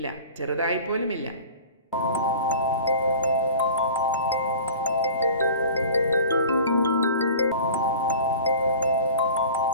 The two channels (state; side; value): inverted; both; correlation -0.41